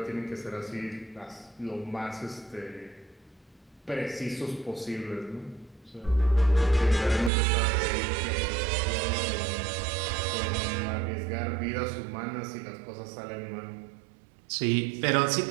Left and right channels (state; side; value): drops out; left; at 7.3 s